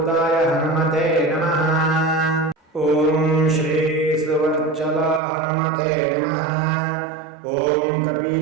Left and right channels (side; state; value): left; drops out; at 5.2 s